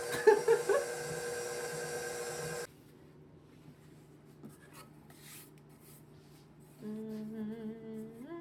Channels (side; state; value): both; identical; correlation 1.00